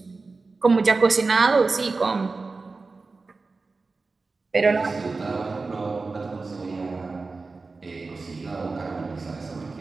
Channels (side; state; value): left; quieter; 3.9 dB